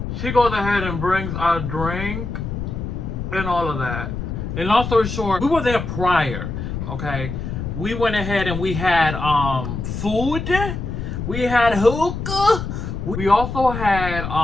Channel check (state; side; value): noise; left; rumble, 5 dB below the sound